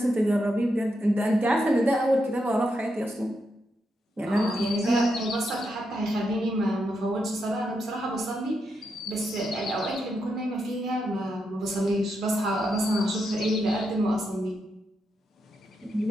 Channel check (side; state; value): both; normal; correlation 0.83